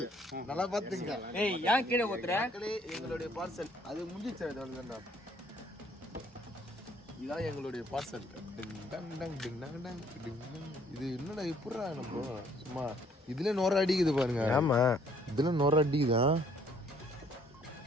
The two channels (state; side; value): normal; both; correlation 0.62